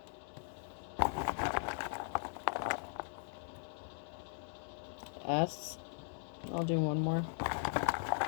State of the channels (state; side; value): silent; right; digital silence